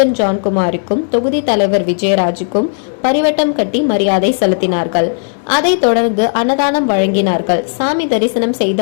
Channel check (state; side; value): silent; right; digital silence